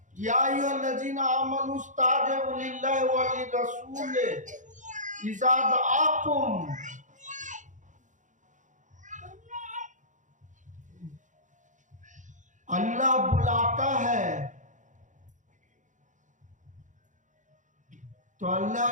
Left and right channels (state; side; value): late; left; 0.36 ms